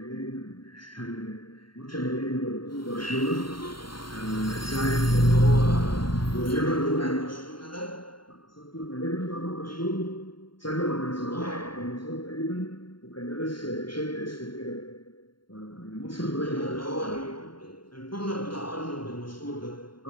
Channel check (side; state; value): right; late; 0.73 ms